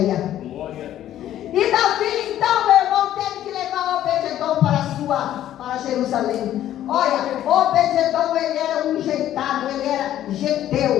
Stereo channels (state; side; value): quieter; right; 12.1 dB